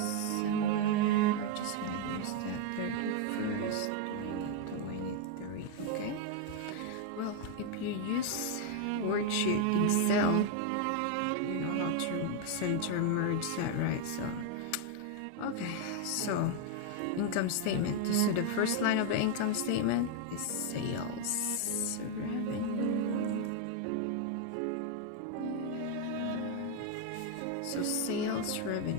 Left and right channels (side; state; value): both; different; correlation 0.00